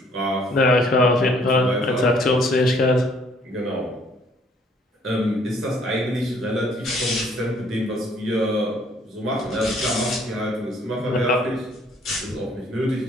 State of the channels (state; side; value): normal; both; correlation 0.62